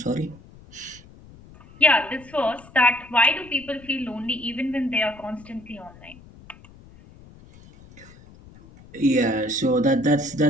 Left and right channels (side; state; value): left; noise; rumble, 22 dB below the sound